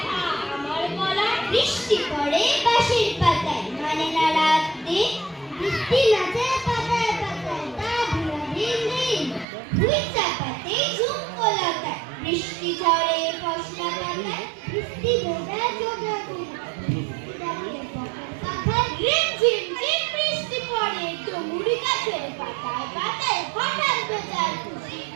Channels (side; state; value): left; drops out; at 9.5 s